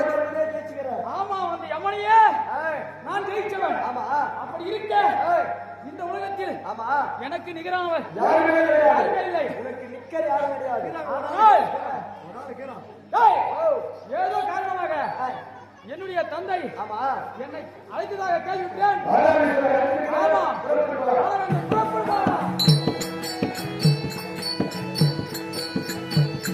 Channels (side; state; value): both; identical; correlation 1.00